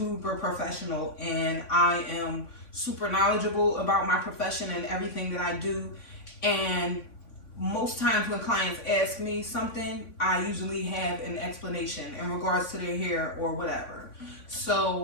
professional and I am super knowledgeable about my profession and everything that I do. And most times when clients ask me something, I usually have an explanation in regards to their hair or whatever.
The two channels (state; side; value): late; right; 3.5 ms